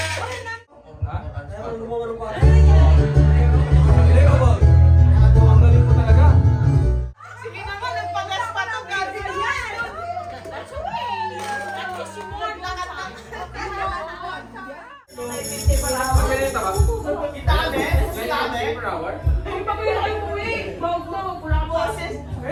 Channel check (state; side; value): identical; both; correlation 1.00